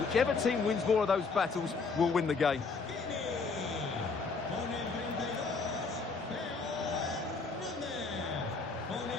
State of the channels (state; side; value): quieter; right; 4.5 dB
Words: Whichever team wins more of those battles will win the game.